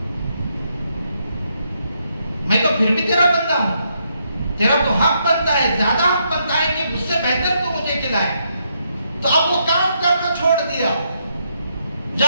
میں تو پھر بھی تیرا بندہ ہوں، تیرا تو حق بنتا ہے، زیادہ حق بنتا ہے کہ مجھ سے بہتر تو مجھے کھلائے۔ تو اب وہ کام کرنا چھوڑ دیا،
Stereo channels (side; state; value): both; inverted; correlation -0.77